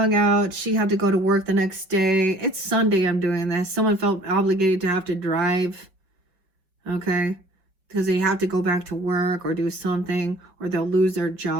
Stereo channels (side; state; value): left; late; 5.3 ms